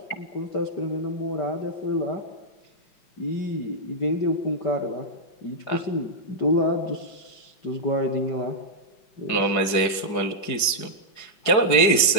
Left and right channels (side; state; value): right; late; 4.9 ms